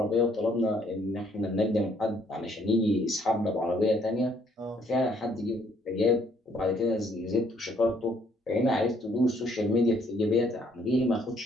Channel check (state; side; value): normal; both; correlation 0.66